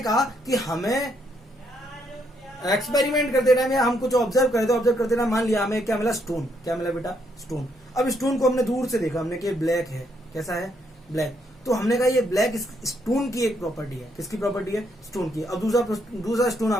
कहा कि हमें एक्सपेरिमेंट करते टाइम हम कुछ ऑब्जर्व करते टाइम मान लिया हमें क्या मिला? स्टोन. क्या मिला बेटा? स्टोन. अब स्टोन को हमने दूर से देखा, हमने कि ब्लैक है. कैसा है? ब्लैक. तो हमने कहा ये ब्लैक स्टोन की एक प्रॉपर्टी है. किसकी प्रॉपर्टी है? स्टोन की. अब दूसरा स्टोन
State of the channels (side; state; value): both; normal; correlation 0.74